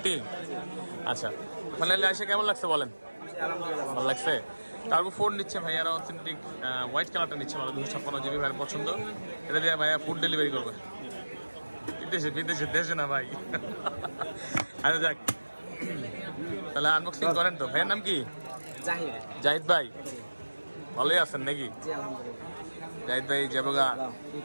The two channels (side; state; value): both; inverted; correlation -1.00